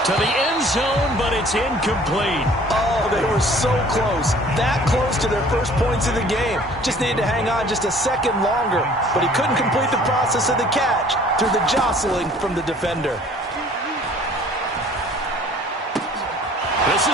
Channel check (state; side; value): normal; both; correlation 0.52